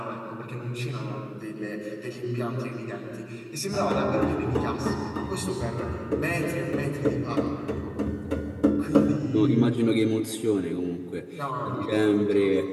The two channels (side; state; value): both; identical; correlation 1.00